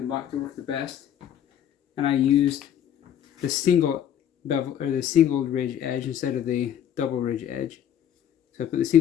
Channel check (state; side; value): quieter; right; 9.9 dB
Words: block to work the best, and I used the single bevel, or the single ridge edge instead of the double ridge edge. So I put the